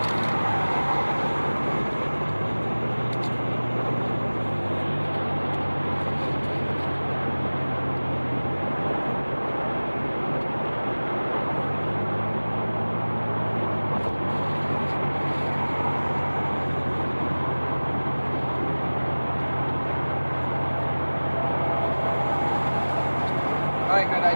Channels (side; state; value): both; inverted; correlation -1.00